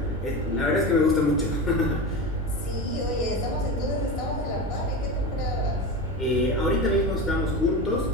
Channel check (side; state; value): both; normal; correlation 0.24